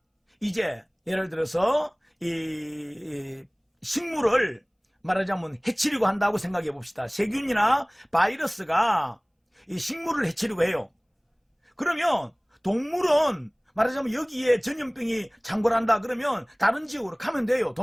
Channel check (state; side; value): identical; both; correlation 1.00